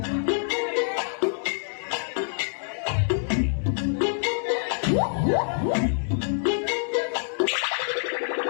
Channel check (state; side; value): silent; right; digital silence